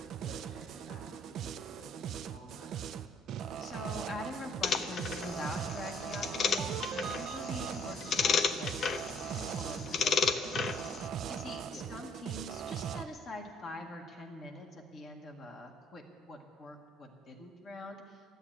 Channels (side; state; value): both; normal; correlation 0.62